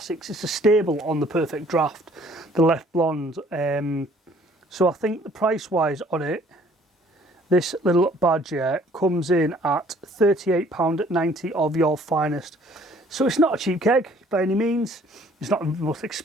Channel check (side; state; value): both; normal; correlation 0.58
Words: It's a staple on the Perfectdraft, the Leffe Blonde. So I think the price-wise on it, this little badger comes in at £38.90 of your finest. So it's not a cheap keg by any means. It's not the most